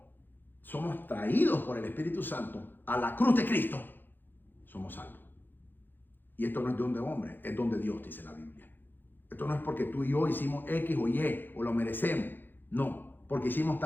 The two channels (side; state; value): right; late; 0.093 ms